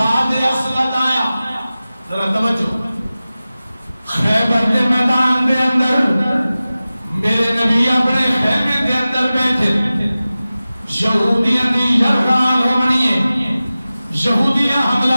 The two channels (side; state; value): both; inverted; correlation -0.96